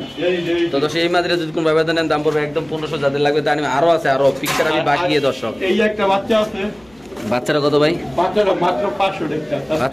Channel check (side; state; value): left; noise; hum, 30 dB below the sound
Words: এই তো দর্শক এই মাদিরা যদি কোন ভাইবা দেন দাম পড়বে একদম 1500 যাদের লাগবে তা আরো আছে আরো পিকচার আমি বাকি দর্শক এই একটা বাচ্চা আছে বাচ্চারা কত ভাই বাচ্চাটা মাত্র 500 টাকা